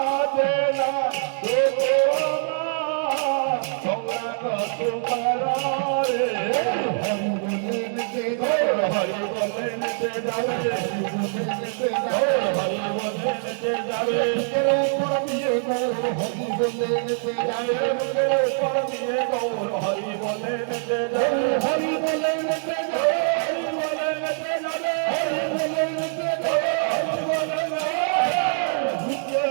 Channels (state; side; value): silent; left; 63 dB below the other